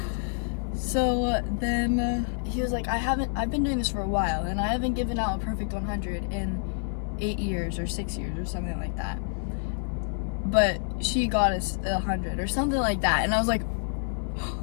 So then he was like, I've been doing this for a while, and I haven't given out a perfect 100 in 8 years or 6 years or something like that. But she got us 100 or something like that. And I was like,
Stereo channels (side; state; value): right; silent; 60 dB below the other